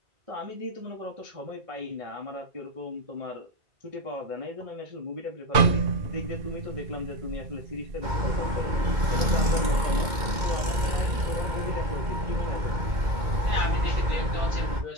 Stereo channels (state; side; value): late; left; 2.2 ms